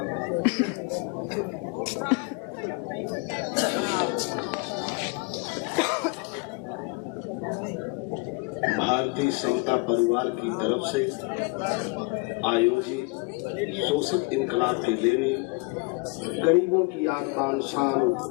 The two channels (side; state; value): right; quieter; 29.4 dB